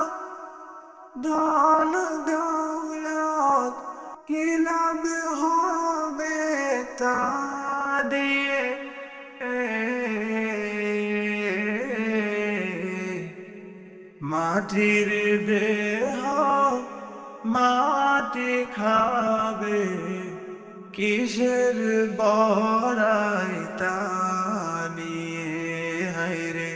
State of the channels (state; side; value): identical; both; correlation 1.00